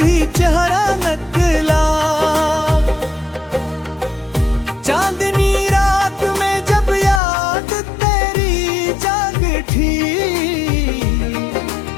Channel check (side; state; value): right; drops out; at 7.2 s